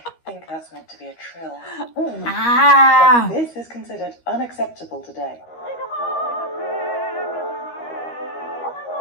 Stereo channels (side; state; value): right; late; 13 ms